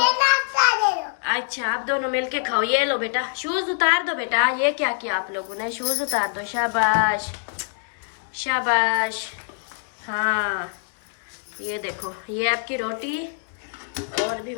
अच्छा आप दोनों मिलके खाओ। ये लो बेटा, शूज उतार दो बेटा। ये क्या किया आप लोगों ने? शूज उतार दो, शाबाश शाबाश। हाँ ये देखो, ये आपकी रोटी, और भी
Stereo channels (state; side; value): silent; right; digital silence